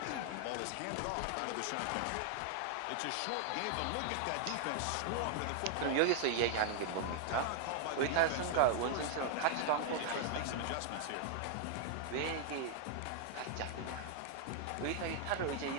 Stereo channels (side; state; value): both; different; correlation 0.00